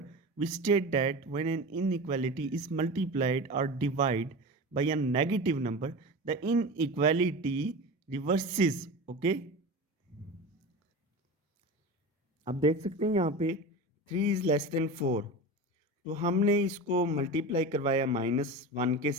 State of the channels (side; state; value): both; normal; correlation 0.29